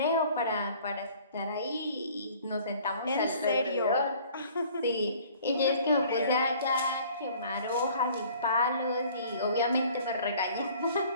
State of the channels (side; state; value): both; inverted; correlation -0.53